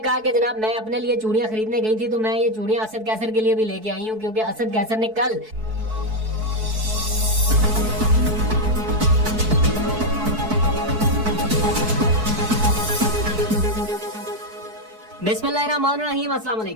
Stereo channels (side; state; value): left; late; 4.6 ms